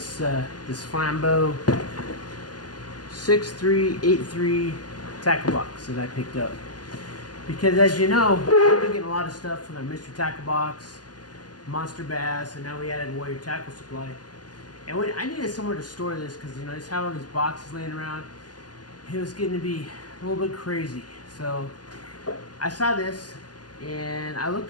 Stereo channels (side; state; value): right; late; 0.69 ms